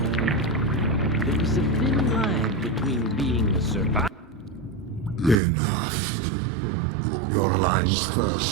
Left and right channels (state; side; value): drops out; left; at 5.4 s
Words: There is a thin line between being a survivor. Enough. Your alliance